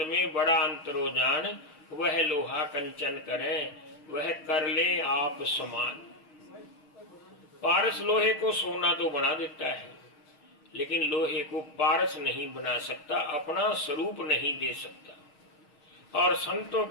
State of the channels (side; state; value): right; late; 6.4 ms